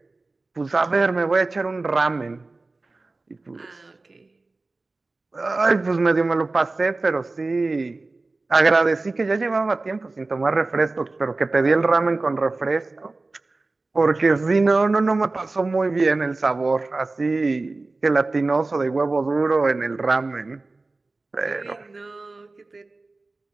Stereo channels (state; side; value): quieter; left; 3.4 dB